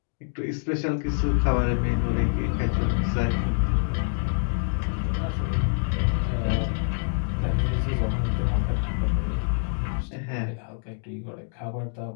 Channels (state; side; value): silent; right; 61 dB below the other